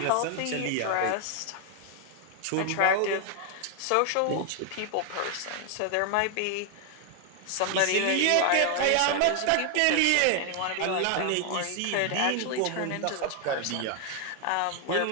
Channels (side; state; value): both; different; correlation 0.00